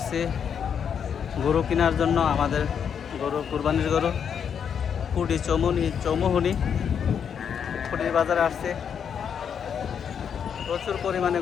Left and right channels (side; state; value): right; quieter; 7.6 dB